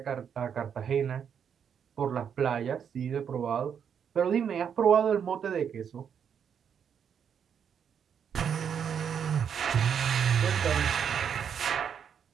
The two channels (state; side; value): quieter; left; 7.8 dB